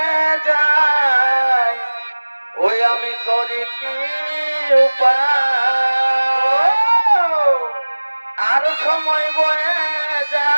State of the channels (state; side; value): inverted; both; correlation -1.00